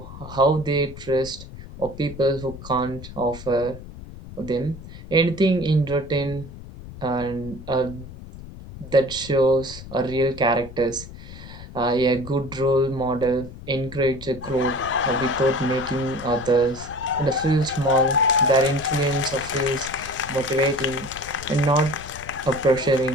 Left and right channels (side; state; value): left; noise; rumble, 14 dB below the sound